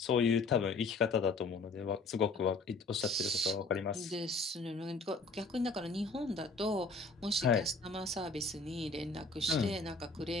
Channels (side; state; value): right; quieter; 3.7 dB